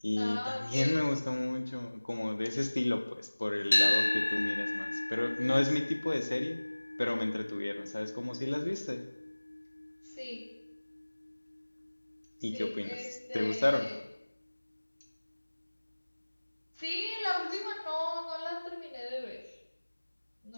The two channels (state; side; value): inverted; both; correlation -1.00